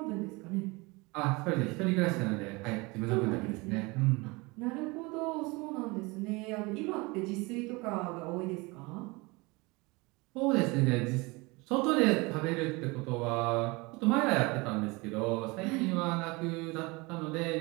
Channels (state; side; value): quieter; left; 25.3 dB